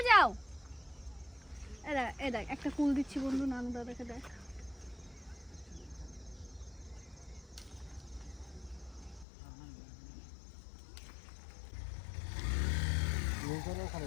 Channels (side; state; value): right; drops out; at 9.2 s